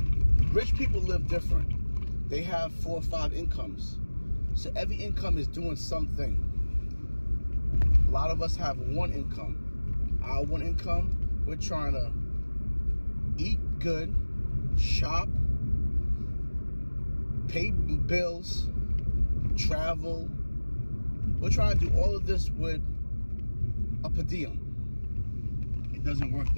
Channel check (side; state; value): both; inverted; correlation -1.00